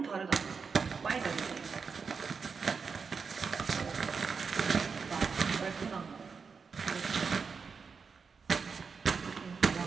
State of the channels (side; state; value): left; quieter; 5.4 dB